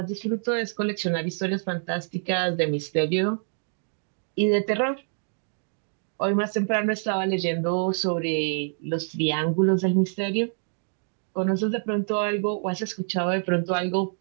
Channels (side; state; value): left; silent; 61 dB below the other